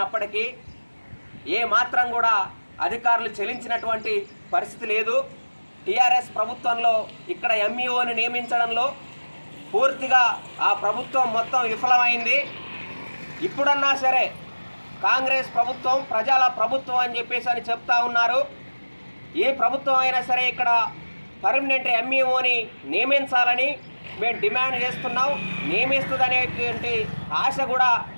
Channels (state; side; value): inverted; both; correlation -1.00